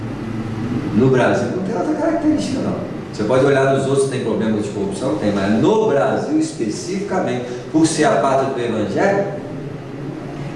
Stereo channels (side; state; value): both; identical; correlation 1.00